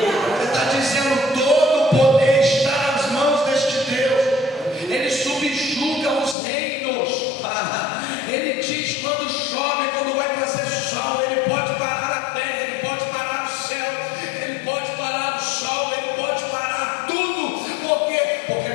está dizendo, todo o poder está nas mãos deste Deus. Ele subjuga os reinos. Ele diz quando chove, quando vai fazer sol, Ele pode parar a terra, Ele pode parar o céu, Ele pode parar o sol, Ele pode parar tudo. Por quê? Porque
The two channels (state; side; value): drops out; right; at 6.4 s